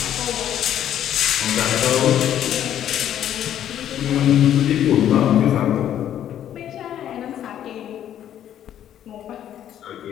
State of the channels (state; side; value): quieter; right; 10.7 dB